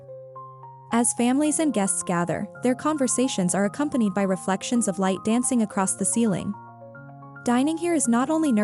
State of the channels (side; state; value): both; identical; correlation 1.00